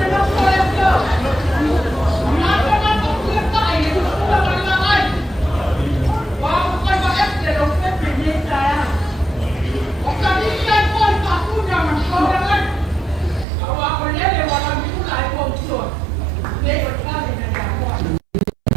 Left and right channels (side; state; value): left; drops out; at 13.5 s